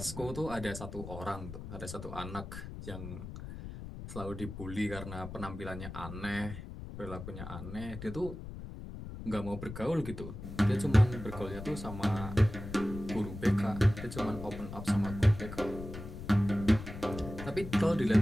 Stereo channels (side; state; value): left; noise; rumble, 10 dB below the sound